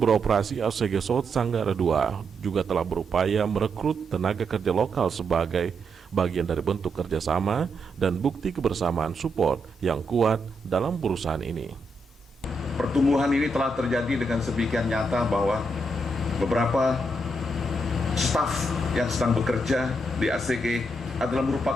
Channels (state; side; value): normal; both; correlation 0.80